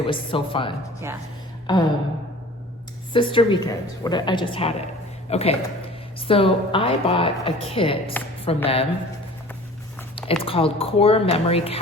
was so fun. Yeah. Sister Weekend. I just had it. Okay. So I bought a kit from them. It's called Core Memory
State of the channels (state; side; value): normal; both; correlation 0.44